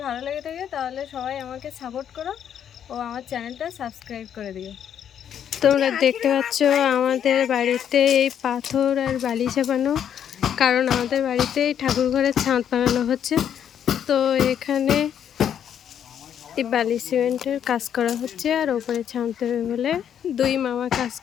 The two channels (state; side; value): quieter; right; 9.1 dB